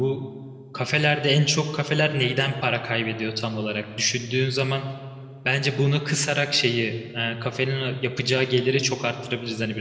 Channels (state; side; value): identical; both; correlation 1.00